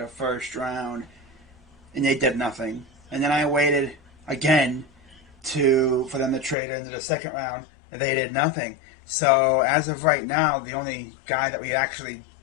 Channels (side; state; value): right; drops out; at 6.6 s